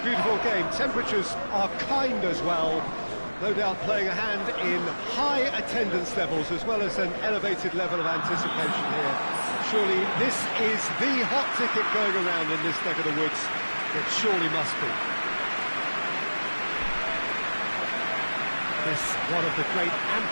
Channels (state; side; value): inverted; both; correlation -1.00